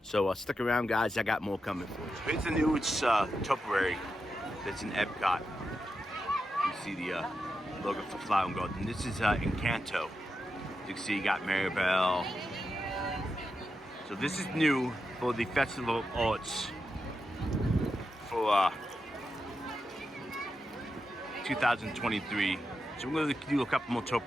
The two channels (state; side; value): normal; both; correlation 0.88